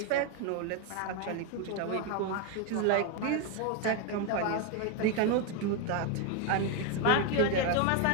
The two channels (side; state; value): both; different; correlation 0.01